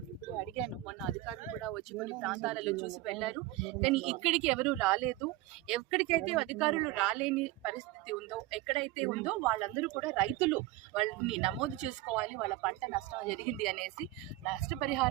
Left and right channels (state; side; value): quieter; left; 17.0 dB